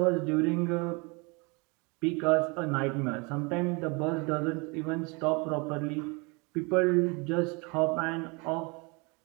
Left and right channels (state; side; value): quieter; left; 29.3 dB